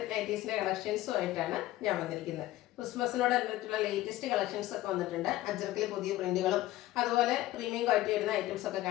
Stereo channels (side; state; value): right; quieter; 15.7 dB